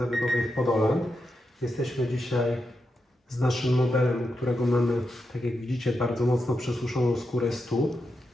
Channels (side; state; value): both; normal; correlation 0.86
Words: w Podoland. Jesteśmy dzisiaj z naszym modelem, u którego mamy, tak jak widzicie, bardzo mocno przesuszoną skórę stóp.